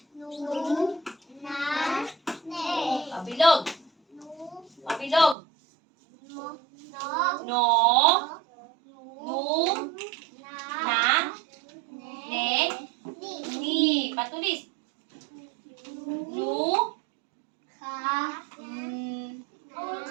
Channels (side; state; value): left; drops out; at 5.4 s